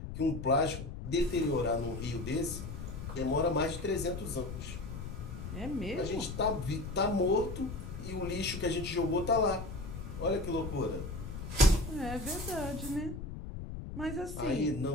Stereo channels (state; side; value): noise; left; rumble, 8 dB below the sound